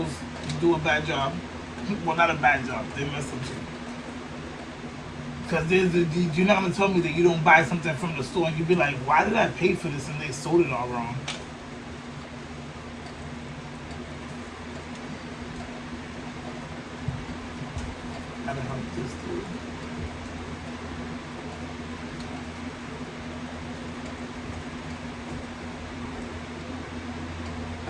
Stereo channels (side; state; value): both; identical; correlation 1.00